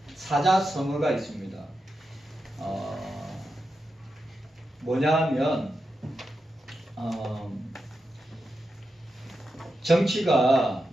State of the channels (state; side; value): normal; both; correlation 0.88